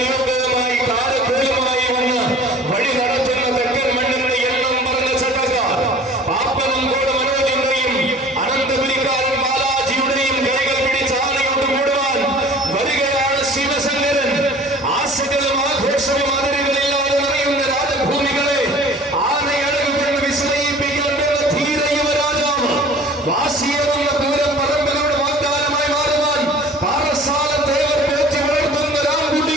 കാലക്കൂലമായി വന്ന് വഴി നടത്തുന്ന തെക്കൻ മണ്ണിന്റെ എണ്ണം പറഞ്ഞ ചട്ടക്കാർ പാപ്പനം കൂടെ മനോജിന്റെയും അനന്തപുരിക്കാരൻ ബാലാജിയുടെയും കൈകൾ പിടിച്ച് ആനയോട്ട് കൂടുവാൻ വരികയാണ് ശിവശങ്കരൻ. ആശകളും ആഘോഷവും അതിരുകളില്ലാതെ നിറയുന്ന രാജഭൂമികളെ ആനയഴകുകൊണ്ട് വിസ്മയിപ്പിക്കാൻ ധീര യുവരാജാവ് വാശിയെന്ന പൂരം പറമ്പലോട് വാഗ്ദാനമായി മാറുവാൻ പാറശാല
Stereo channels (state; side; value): normal; both; correlation 0.46